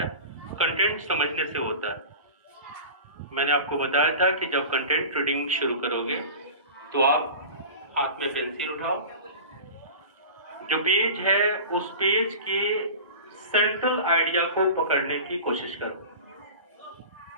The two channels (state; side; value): inverted; both; correlation -0.35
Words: कंटेंट समझने से होता है। मैंने आपको बताया था कि जब कंटेंट रीडिंग शुरू करोगे तो आप हाथ में पेंसिल उठाओ, जो पेज है उस पेज के सेंट्रल आइडिया को पकड़ने की कोशिश करो।